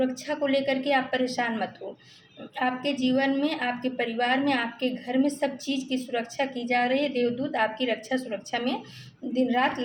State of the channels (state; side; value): identical; both; correlation 1.00